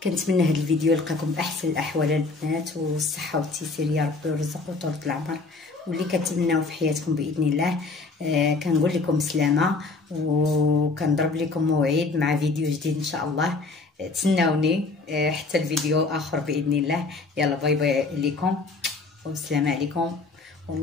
كنتمنى هذا الفيديو يلقاكم باحسن الاحوال البنات، والصحه والتيسير يا ربي، ويرزق وطولة العمر، واللي كتمناو في حياتكم باذن الله. كنقول لكم سلامه، وكنضرب لكم موعد مع فيديو جديد ان شاء الله. تسناوني حتى الفيديو اخر باذن الله. يلا باي باي لكم، والسلام عليكم،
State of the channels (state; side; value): quieter; right; 3.7 dB